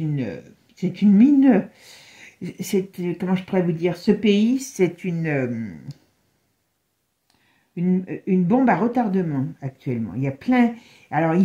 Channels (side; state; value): both; identical; correlation 1.00